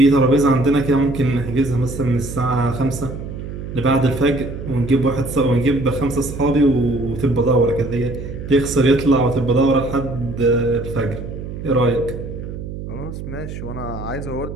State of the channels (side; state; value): right; noise; hum, 9 dB below the sound